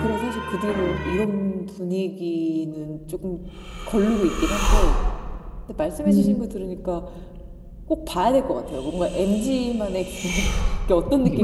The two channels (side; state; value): both; identical; correlation 1.00